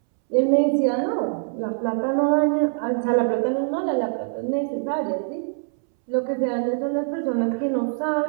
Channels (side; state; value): left; silent; 63 dB below the other